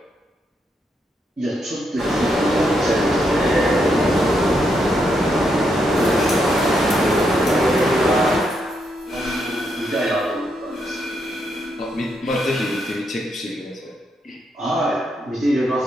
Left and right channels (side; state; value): both; normal; correlation 0.79